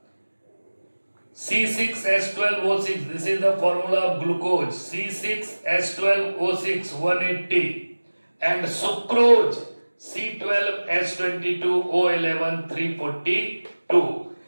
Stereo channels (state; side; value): inverted; both; correlation -1.00